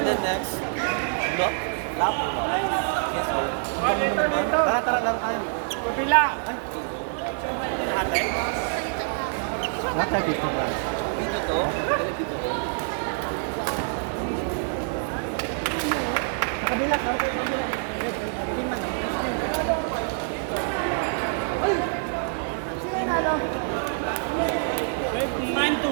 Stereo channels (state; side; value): silent; left; 61 dB below the other